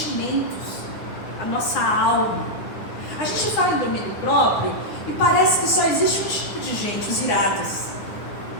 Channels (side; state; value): right; late; 9.7 ms